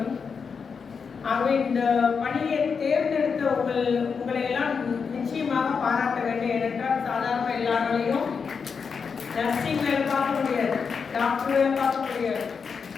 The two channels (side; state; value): right; quieter; 5.8 dB